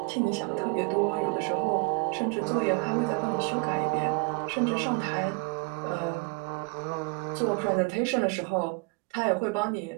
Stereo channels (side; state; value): left; quieter; 29.5 dB